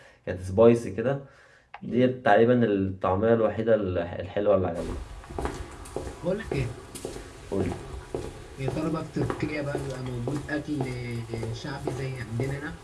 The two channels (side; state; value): both; identical; correlation 1.00